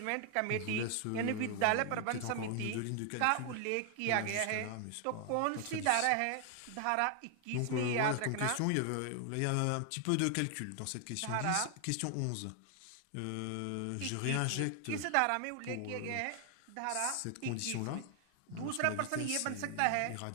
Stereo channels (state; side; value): different; both; correlation 0.00